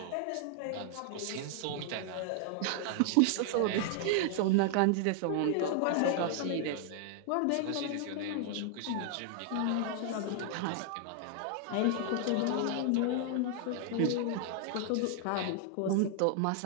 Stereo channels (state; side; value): different; both; correlation 0.00